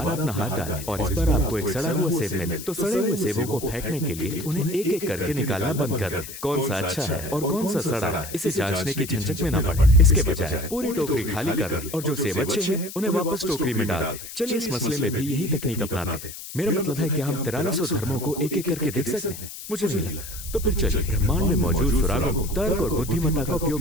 अपना हाथ डालें और इस पर आपको एक सड़ा हुआ सेब मिले, तो सड़े हुए सेबों को फेंकने के लिए उन्हें एक एक करके निकालना बंद कर दें। कौन सा अच्छा है और कौन सा सड़ा है, इसे जांचने की झंझट में न पड़े। इसके बजाय पूरी टोकरी खाली कर दें और जो सेब अच्छे हैं उन्हें वापस टोकरी में डाल दें। चलिए इस मसले में भी यही तकनीक अपनाते हैं। मेरा मतलब है कि हम 4300 धर्मों को एक एक करके देख सकते हैं? मुझे नहीं लगता। तो फिर चलिए ब्रह्मांड में मौजूद सुरागों को तर्क और बुद्धिमत्ता का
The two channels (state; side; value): noise; left; hiss, 11 dB below the sound